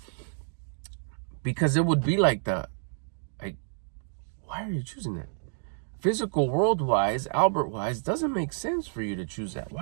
because it would be like why are you choosing that? Physical world-wise, Albert-wise, doesn't make sense for you to choose that.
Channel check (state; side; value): silent; left; digital silence